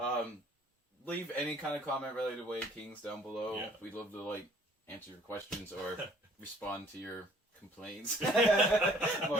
Leave any kind of comment related to Way of Kings down below. Yeah. We'd love to answer your questions or respond to your complaints. More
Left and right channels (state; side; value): normal; both; correlation 0.57